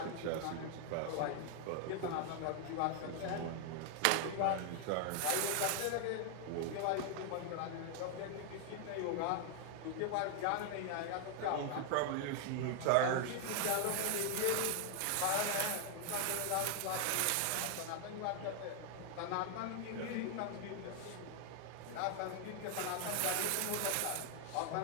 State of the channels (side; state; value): both; different; correlation 0.00